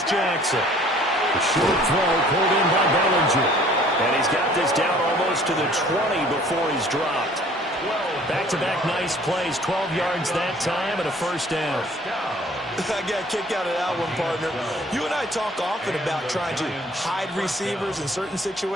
Jackson. The short throw pulled in by Bellinger. And he's got this down almost to the 20 before he's dropped. Back-to-back nice plays, 12 yards that time and a first down. I got a kick out of that one, partner. You and I talk often about trying to hide receivers in certain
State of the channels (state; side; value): normal; both; correlation 0.54